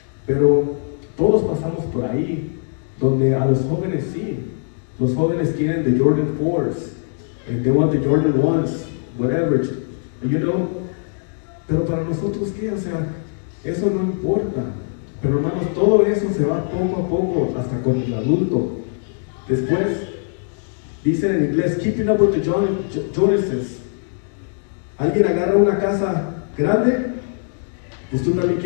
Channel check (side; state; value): right; silent; digital silence